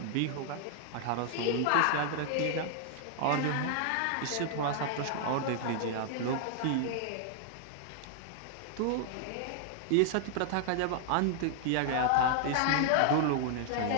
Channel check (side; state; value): both; different; correlation -0.01